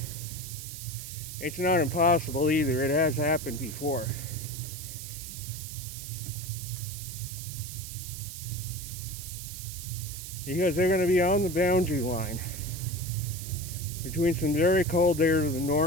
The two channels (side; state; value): right; noise; hiss, 10 dB below the sound